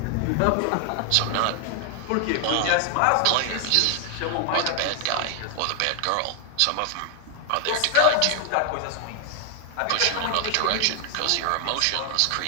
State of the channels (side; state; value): both; different; correlation 0.00